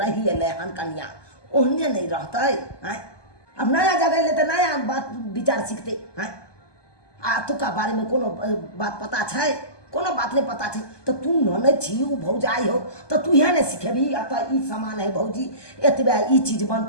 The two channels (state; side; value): late; right; 1.2 ms